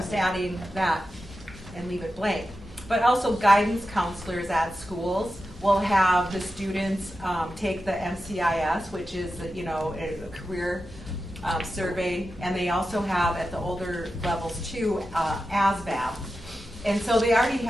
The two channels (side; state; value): both; normal; correlation 0.91